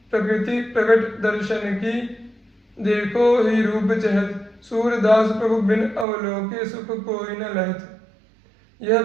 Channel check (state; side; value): drops out; left; at 6.1 s